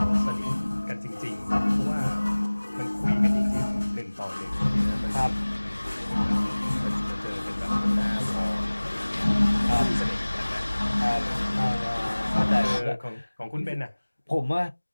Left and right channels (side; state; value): both; inverted; correlation -1.00